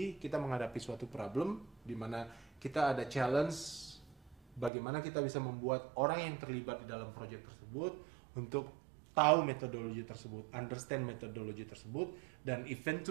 kita menghadapi suatu problem di mana kita ada challenge bagaimana kita bisa membuat orang yang terlibat di dalam project tersebut untuk tahu metodologi tersebut, understand metodologi tersebut, dan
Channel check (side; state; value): left; drops out; at 4.7 s